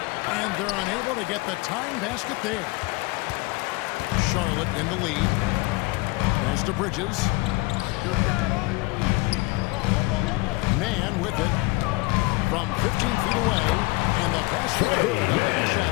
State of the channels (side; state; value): right; quieter; 23.8 dB